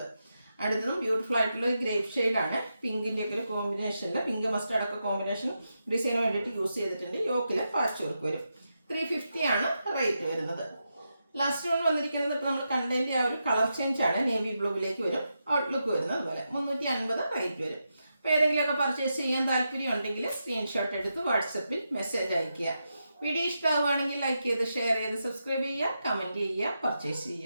അടുത്തതും ബ്യൂട്ടിഫുൾ ആയിട്ടുള്ള ഗ്രേപ്പ് ഷെയ്ഡാണ്. പിങ്കിൻ്റെ ഒക്കെ ഒരു കോമ്പിനേഷനിൽ പിങ്ക് മസ്റ്റാർഡ് ഒക്കെ കോമ്പിനേഷൻ ഡിസൈന് വേണ്ടിയിട്ട് യൂസ് ചെയ്തിട്ടുണ്ട്. യോക്കിൽ പാച്ച് വർക്ക് വരും. 350 റേറ്റ് വരുന്നത്. ലാസ്റ്റ് വൺ വന്നിരിക്കുന്നത് ഇപ്പോൾ നമ്മൾ കണ്ടതിൻ്റെ ആ ഒരു കളർ ചേഞ്ച് ആണ്. നേവി ബ്ലൂവിലേക്ക് വരും. ഔട്ട്ലുക്ക് വരുന്നത് അതുപോലെ 350 റേറ്റ് വരും. അപ്പോൾ ഏതെങ്കിലുമൊക്കെ പർച്ചേസ് ചെയ്യാൻ താല്പര്യം ഉണ്ടെങ്കിൽ സ്ക്രീൻഷോട്ട് എടുത്ത് വാട്സപ്പിൽ മെസ്സേജ് അയയ്ക്കുക. വീഡിയോ ഇഷ്ടമാവുകയാണെങ്കിൽ ലൈക്ക് ചെയ്ത് ഷെയർ ചെയ്ത് സബ്സ്ക്രൈബ് ചെയ്യുക, കമൻറ്റ് ചെയ്യുക, പർച്ചേസ്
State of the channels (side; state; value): both; inverted; correlation -0.86